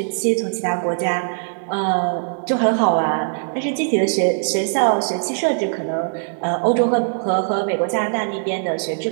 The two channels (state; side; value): silent; left; 65 dB below the other